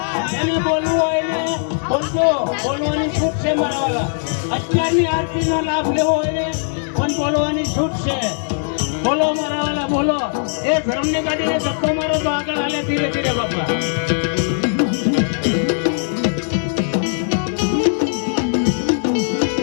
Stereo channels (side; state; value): right; silent; digital silence